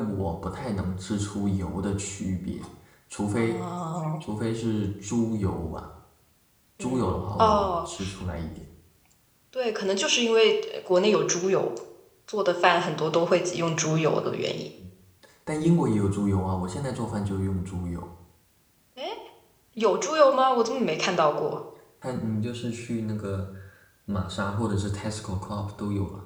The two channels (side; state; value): both; identical; correlation 1.00